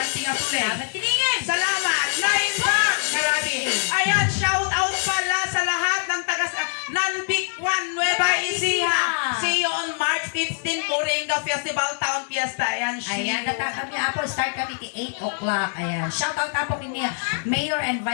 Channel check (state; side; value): silent; right; 63 dB below the other